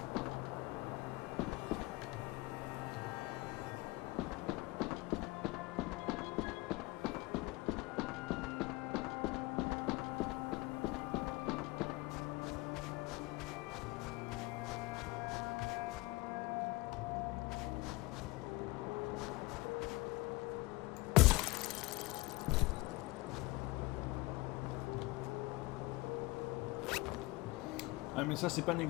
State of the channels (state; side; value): quieter; right; 22.1 dB